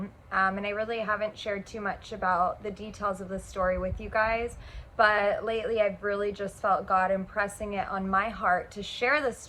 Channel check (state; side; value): identical; both; correlation 1.00